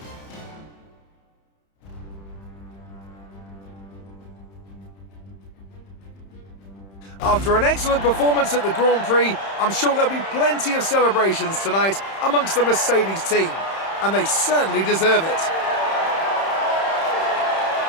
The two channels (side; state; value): right; late; 31 ms